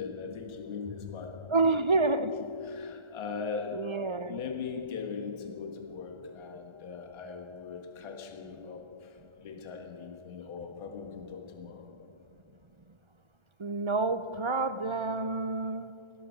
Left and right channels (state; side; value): late; left; 1.3 ms